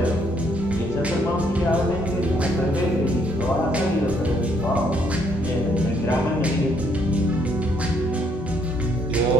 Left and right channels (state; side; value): normal; both; correlation 0.69